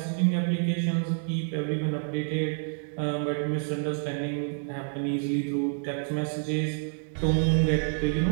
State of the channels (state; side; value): silent; left; 59 dB below the other